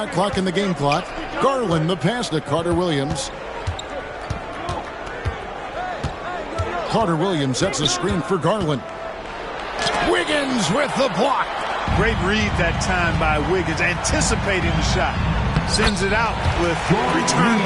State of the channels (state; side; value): identical; both; correlation 1.00